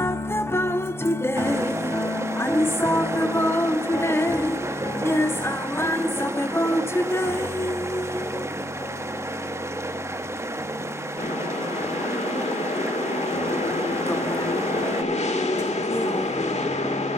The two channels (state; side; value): normal; both; correlation 0.73